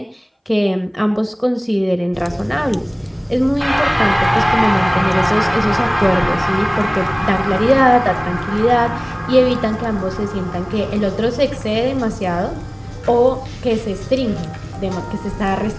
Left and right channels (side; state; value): both; identical; correlation 1.00